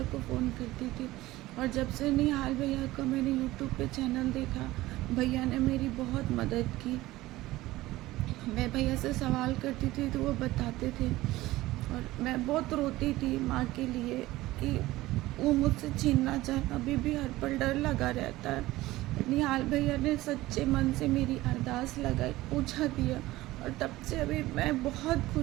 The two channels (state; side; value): quieter; left; 17.6 dB